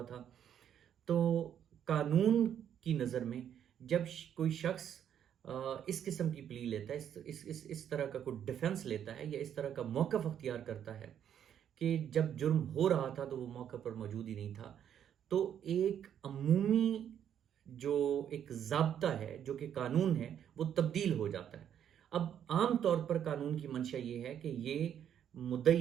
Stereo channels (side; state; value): left; quieter; 9.4 dB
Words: था। तो कानून की नज़र में जब कोई शख्स इस किस्म की प्ली लेता है, इस तरह का कोई डिफेंस लेता है या इस तरह का मौक़िफ़ अख्तियार करता है कि जब जुर्म हो रहा था तो वो मौके पर मौजूद ही नहीं था, तो एक अमूमी जो एक ज़ाब्ता है, जो कि कानून है, वो तब्दील हो जाता है। अब आम तौर पर कानून की मंशा ये है कि ये